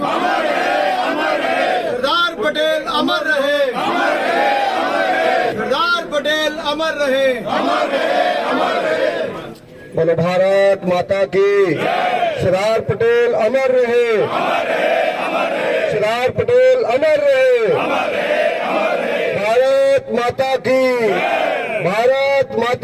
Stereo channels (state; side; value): identical; both; correlation 1.00